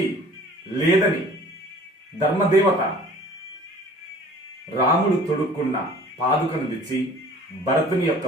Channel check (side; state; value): both; normal; correlation 0.48